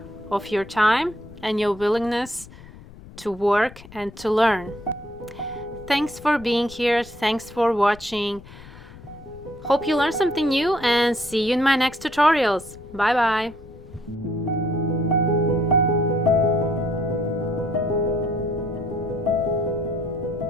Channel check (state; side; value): noise; left; rumble, 19 dB below the sound